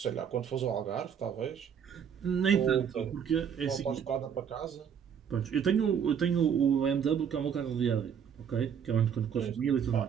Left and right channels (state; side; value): quieter; left; 7.8 dB